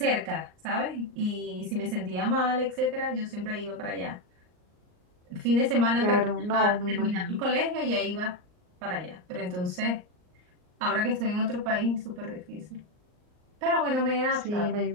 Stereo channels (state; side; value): late; left; 39 ms